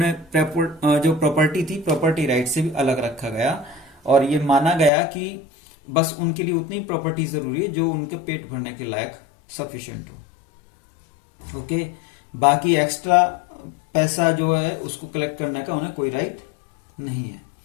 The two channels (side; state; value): right; drops out; at 4.9 s